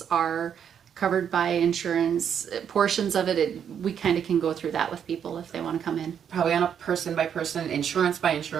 are covered by insurance. Portions of it, we kind of can go through that with people if they want to come in. Probably on a person by person, insurance by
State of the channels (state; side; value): quieter; left; 8.3 dB